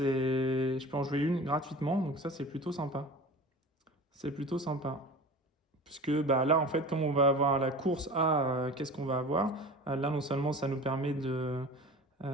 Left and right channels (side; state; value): both; normal; correlation 0.37